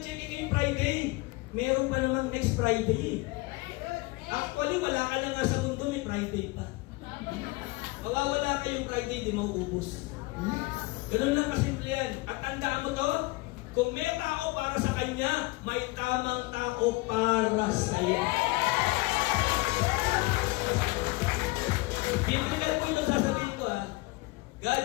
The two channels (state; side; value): quieter; right; 22.9 dB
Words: ngayong Friday. Meron pa naman next Friday. Actually, wala ka na nga sa mundo, may Friday pa. Mawawala kayong Friday, di mauubos. Ganun lang kasimple yan. At tandaan mo to, kung may tao para sa kanya, may tamang tao para sa'yo. Biblical po ito sasabihin ko ha. God